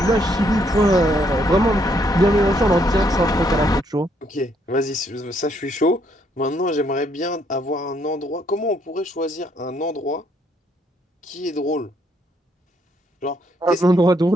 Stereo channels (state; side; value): normal; both; correlation 0.71